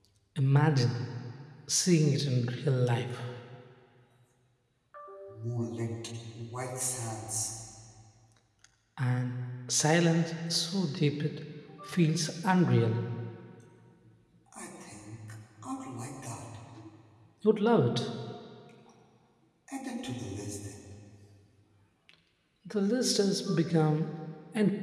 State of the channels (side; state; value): both; identical; correlation 1.00